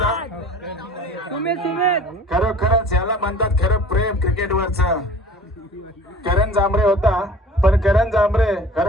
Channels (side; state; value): both; normal; correlation 0.46